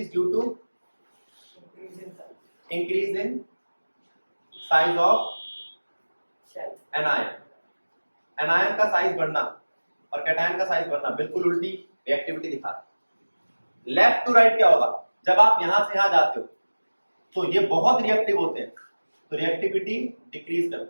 due to increase in size of anion. Anion का साइज बढ़ना और कैटायन का साइज बढ़ना बिल्कुल उल्टी रिएक्टिविटी दिखा। लेफ्ट टू राइट क्या होगा? जब आप यहां से यहां जाते हो तो ये बहुत रिएक्टिव होते हैं, तो रिएक्टिविटी डिक्रीज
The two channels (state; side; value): inverted; both; correlation -1.00